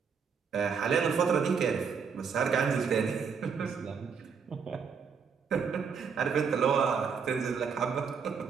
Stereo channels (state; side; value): quieter; left; 6.2 dB